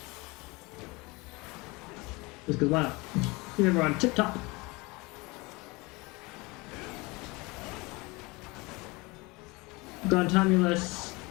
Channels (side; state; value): right; quieter; 24.9 dB